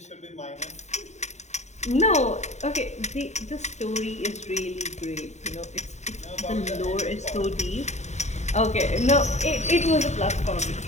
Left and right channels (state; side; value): late; right; 0.33 ms